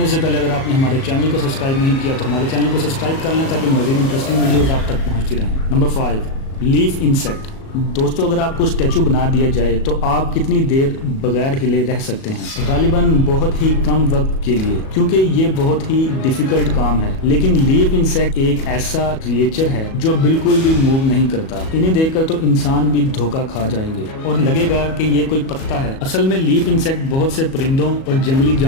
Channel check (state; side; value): late; right; 37 ms